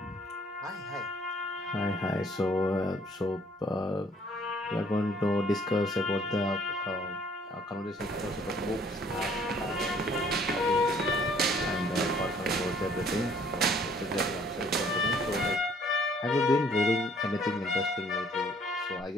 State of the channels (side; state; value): both; normal; correlation 0.60